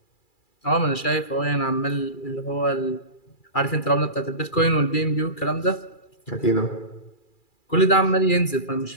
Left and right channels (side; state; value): right; late; 2.3 ms